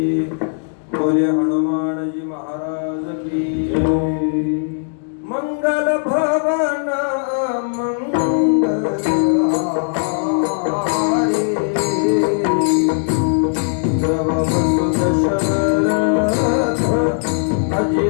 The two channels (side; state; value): right; silent; digital silence